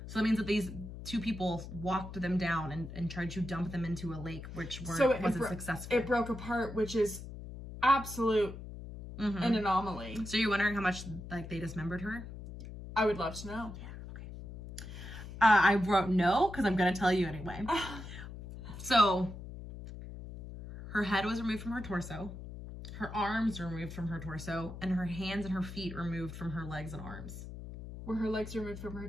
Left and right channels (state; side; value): noise; left; hum, 11 dB below the sound